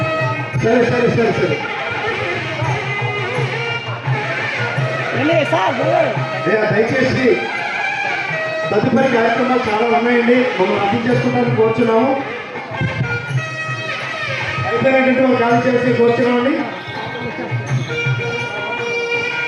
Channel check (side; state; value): both; identical; correlation 1.00